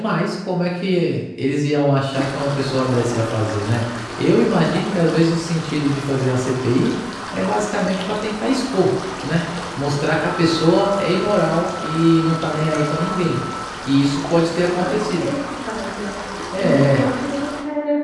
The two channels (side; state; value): both; identical; correlation 1.00